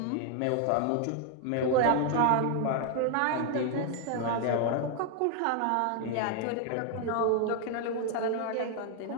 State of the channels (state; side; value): different; both; correlation 0.00